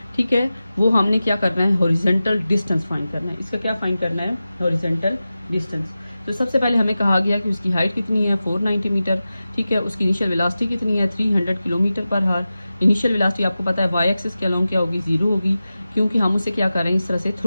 ठीक है, वो हमने क्या करना है, हॉरिजॉन्टल डिस्टेंस फाइंड करना है। इसका क्या फाइंड करना है, हॉरिजॉन्टल डिस्टेंस। तो सबसे पहले हमें कहा गया कि उसकी हाइट कितनी है, 490 मीटर। ठीक है, उसकी इनिशियल वेलोसिटी कितनी है, 300 किलोमीटर पर हावर। इनिशियल वेलोसिटी आपको पता है वाई एक्सिस के अलोंग क्या होगी, 0 होगी, क्योंकि हम उसे क्या कर रहे हैं, इस तरह से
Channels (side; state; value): both; inverted; correlation -0.94